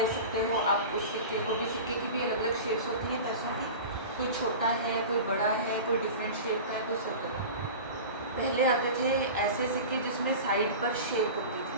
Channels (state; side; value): inverted; both; correlation -0.33